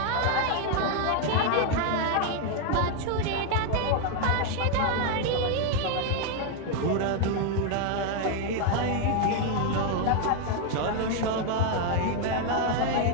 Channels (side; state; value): both; different; correlation 0.01